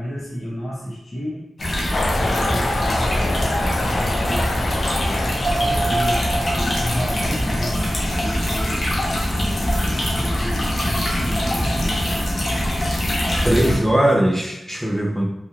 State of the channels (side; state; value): both; normal; correlation 0.94